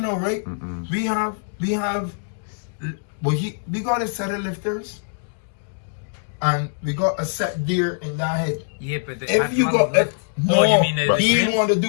now, right? We have, we got a set of lifters, and we got a set deer in that head. Yeah, but the If you got, no, you mean the he trim? want to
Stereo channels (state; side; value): silent; right; digital silence